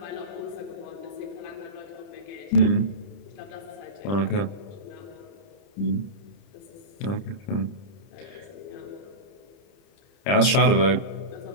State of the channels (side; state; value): right; late; 30 ms